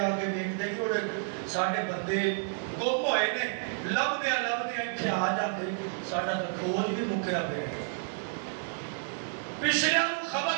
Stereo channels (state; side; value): silent; left; 58 dB below the other